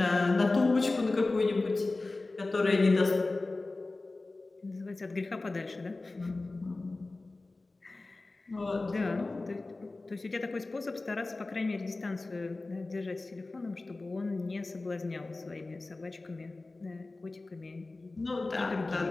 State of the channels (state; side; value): quieter; right; 3.2 dB